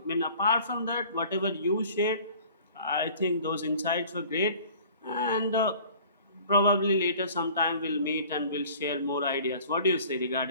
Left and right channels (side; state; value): both; inverted; correlation -0.48